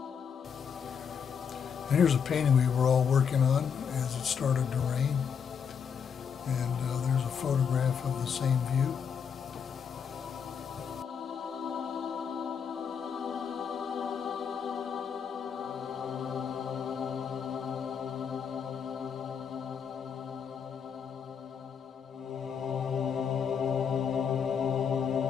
And here's a painting we were all working on as it started to rain. And there's a photograph of the same view.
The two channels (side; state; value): right; quieter; 7.0 dB